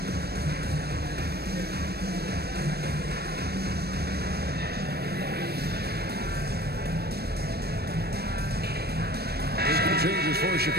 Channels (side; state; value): left; late; 0.47 ms